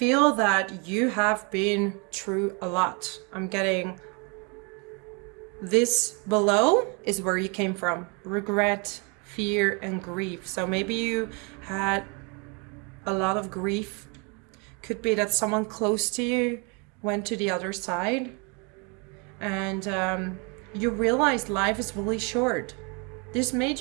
that you have been through a lot. I'm getting this below is where you came from. Regret, fear, and grief. So maybe you had a lot of grief. Could be that someone close to you went to the other side. And you realized life is really short. This made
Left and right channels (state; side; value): quieter; left; 32.4 dB